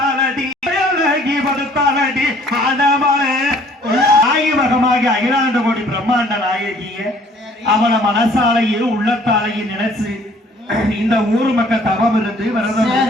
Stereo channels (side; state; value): both; normal; correlation 0.57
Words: படுத்தாலடி ஆனமலை ஆயிமகமாகி அகிலாண்ட கோடி பிரம்மாண்ட நாயகிய அவளை மனசாலையும் உள்ளத்தாலையும் நினைச்சு இந்த ஊர் மக்கள் தவம் இருந்து விரதம்